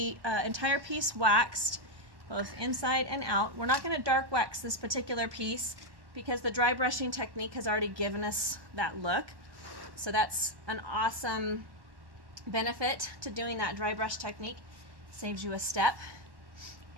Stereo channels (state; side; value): late; left; 1.1 ms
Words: entire piece waxed, both inside and out. We're not going to dark wax this particular piece because the dry brushing technique has already given us that look. So that's an awesome benefit to doing that dry brush technique. Saves you a step.